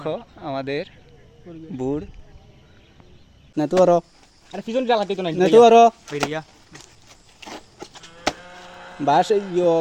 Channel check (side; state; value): both; identical; correlation 1.00